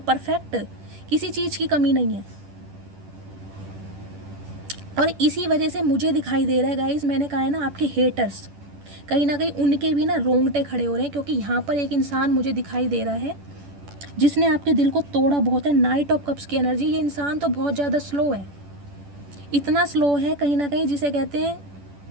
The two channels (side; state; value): left; late; 10 ms